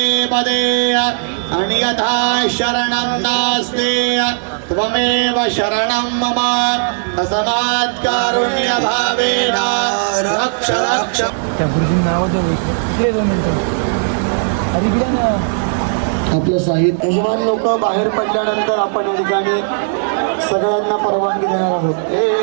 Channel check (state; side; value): silent; left; digital silence